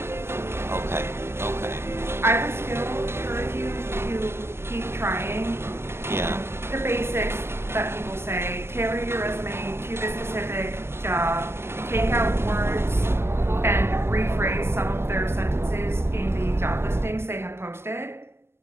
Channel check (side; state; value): left; late; 0.12 ms